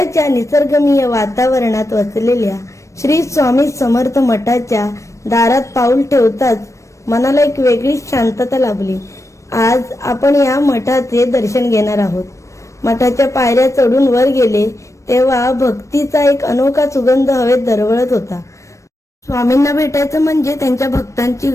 निसर्गरम्य वातावरणात वसलेल्या श्री स्वामी समर्थ मठाच्या दारात पाऊल ठेवताच मनाला एक वेगळीच शांतता लाभली। आज आपण या मठाचे दर्शन घेणार आहोत। मठाच्या पायऱ्या चढून वर गेले तेव्हा भक्तीचा एक अनोखा सुगंध हवेत दरवळत होता। स्वामींना भेटायचं म्हणजे त्यांच्या भक्तांची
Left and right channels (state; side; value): late; right; 0.15 ms